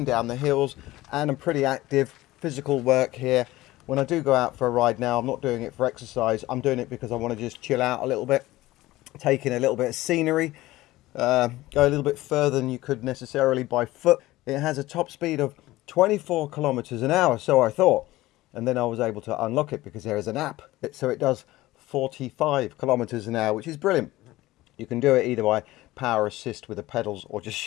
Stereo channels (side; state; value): right; quieter; 17.6 dB